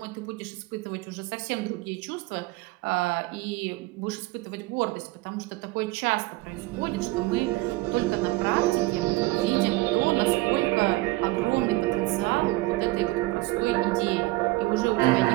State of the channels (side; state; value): left; quieter; 21.0 dB